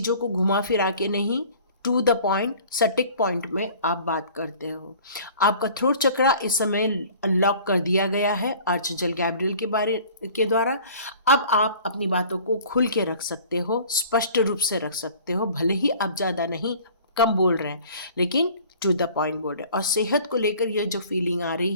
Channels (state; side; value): inverted; both; correlation -0.48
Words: को घुमा फिरा के नहीं, टू द पॉइंट, सटीक पॉइंट में आप बात करते हो। आपका थ्रोट चक्रा इस समय अनलॉक कर दिया गया है आर्चएंजल गैब्रियल के द्वारा। अब आप अपनी बातों को खुल के रख सकते हो, स्पष्ट रूप से रख सकते हो। भले ही आप ज़्यादा नहीं, कम बोल रहे हैं, लेकिन टू द पॉइंट बोल रहे हैं। और सेहत को लेकर ये जो फीलिंग आ रही